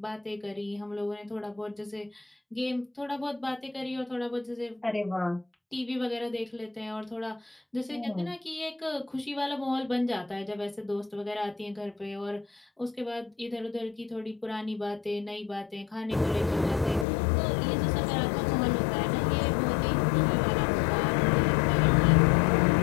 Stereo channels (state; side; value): drops out; right; at 17.1 s